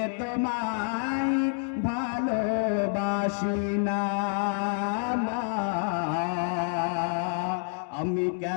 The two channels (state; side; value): silent; right; digital silence